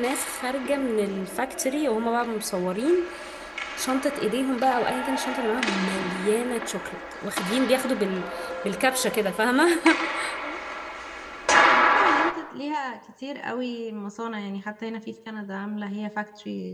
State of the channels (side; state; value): both; identical; correlation 1.00